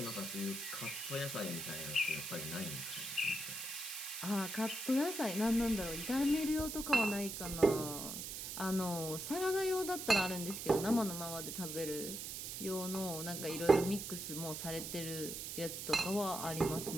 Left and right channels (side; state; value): right; noise; hiss, 6 dB below the sound